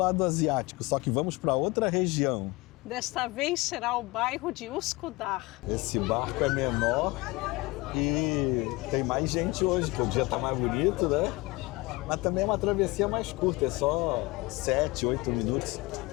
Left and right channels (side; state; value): right; quieter; 22.9 dB